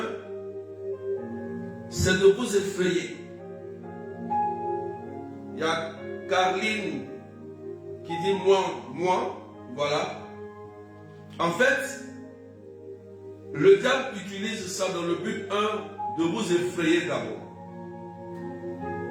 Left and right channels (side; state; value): both; identical; correlation 1.00